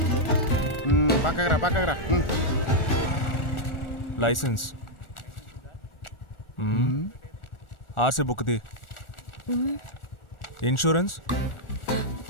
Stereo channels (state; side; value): late; right; 1.4 ms